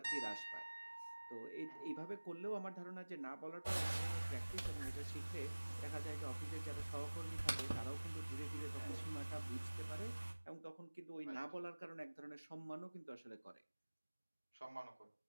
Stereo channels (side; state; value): both; inverted; correlation -1.00